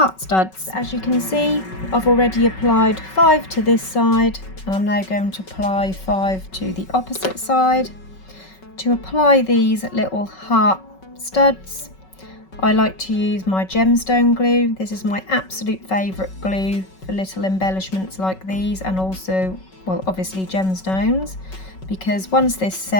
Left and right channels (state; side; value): late; right; 5.3 ms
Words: studs. As you can see, I've already applied 5 to this side, and I'm now going to apply 5 to the opposite side. To apply these little heart studs, I like to use my gemstone glue. This is my absolute favourite glue for little embellishments like these, and also, well, obviously gemstones, because once this